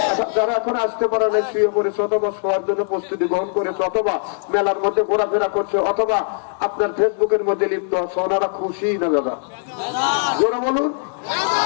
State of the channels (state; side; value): silent; right; digital silence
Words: যারা এখন আসতে পারে না, শুয়ে পড়েছে, অথবা শোয়ার জন্য প্রস্তুতি গ্রহণ করেছে, অথবা মেলার মধ্যে ঘোরাফেরা করছে, অথবা আপনার ফেসবুকের মধ্যে লিপ্ত আছে, ওনারা খুশি না দাদা? জোরে বলুন,